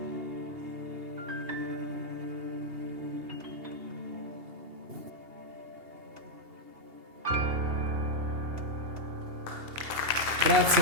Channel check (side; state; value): left; late; 2.8 ms